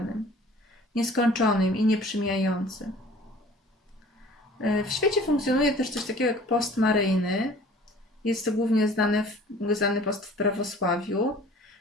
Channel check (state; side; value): normal; both; correlation 0.49